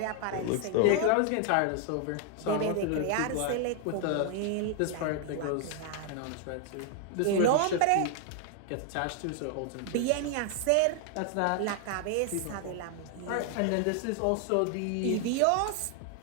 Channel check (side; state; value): both; different; correlation 0.00